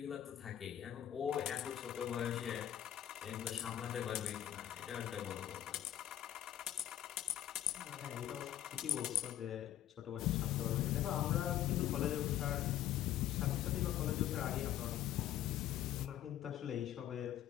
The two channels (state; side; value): quieter; right; 11.8 dB